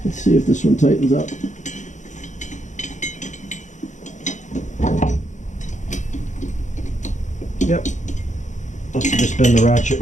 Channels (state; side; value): late; right; 0.35 ms